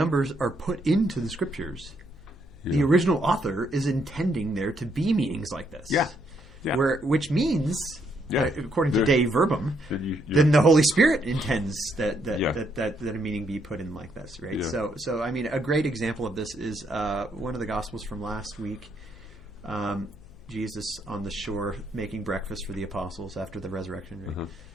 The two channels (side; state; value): left; noise; hum, 21 dB below the sound